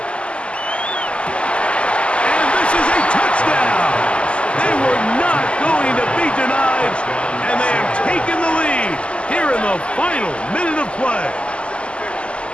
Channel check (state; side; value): late; right; 0.054 ms